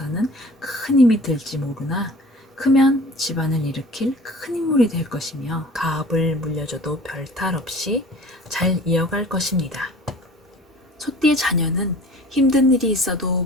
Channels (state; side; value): normal; both; correlation 0.46